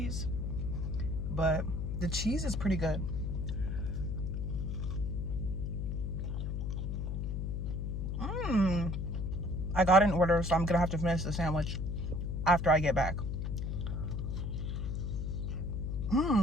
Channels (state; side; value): noise; left; hum, 2 dB below the sound